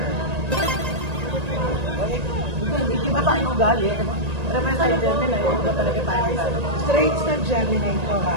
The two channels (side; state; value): left; late; 1.8 ms